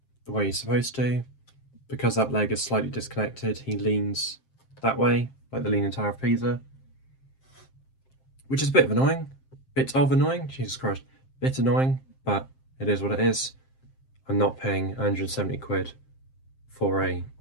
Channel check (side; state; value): right; late; 7.6 ms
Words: the way he's supposed to. Because that leg is slightly disconnected, he leans that way, like the Leaning Tower of Pisa. Which is a bit annoying, Jesus Christ, bit annoying, but it is what it is. I'm not paying 170 quid for a